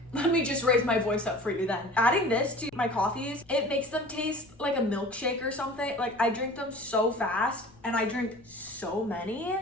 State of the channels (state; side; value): noise; left; rumble, 28 dB below the sound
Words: let me just raise my voice up for you then. Adding this to my coffees, it makes them taste like a milkshake or something. Like I drink them so fast and I drink so many.